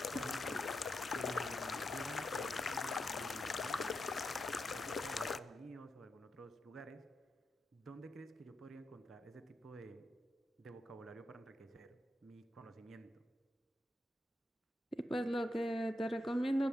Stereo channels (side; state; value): both; normal; correlation 0.86